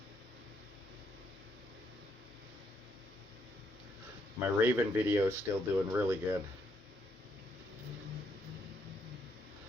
My Raven video is still doing really good.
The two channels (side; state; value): both; normal; correlation 0.74